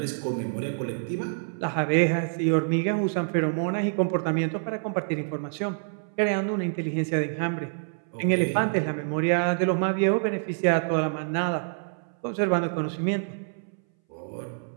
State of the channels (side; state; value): left; silent; 60 dB below the other